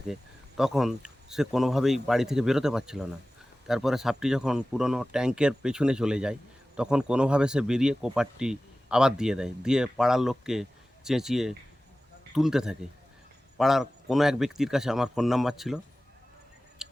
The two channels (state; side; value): normal; both; correlation 0.96